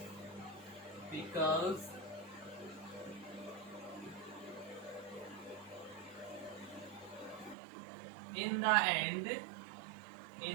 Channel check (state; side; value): drops out; left; at 7.6 s